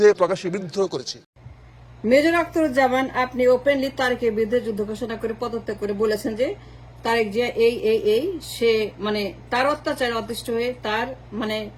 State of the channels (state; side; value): identical; both; correlation 1.00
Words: প্রকাশ্যে বিদ্রোহ করেছি। মেজর আখতারুজ্জামান, আপনি ওপেনলি তারেকের বিরুদ্ধে যুদ্ধ ঘোষণা করে পদত্যাগ করে বলেছেন যে তারেক জিয়া এই সে তার অত্যাচারে অতিষ্ঠ হয়ে তার